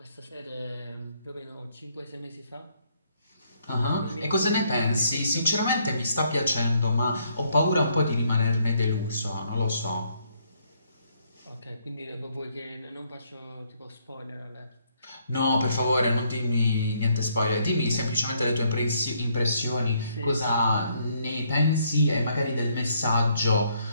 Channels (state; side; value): inverted; both; correlation -0.71